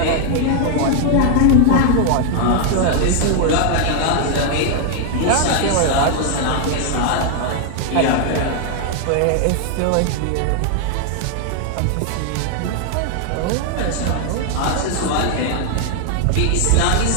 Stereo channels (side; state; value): both; different; correlation 0.00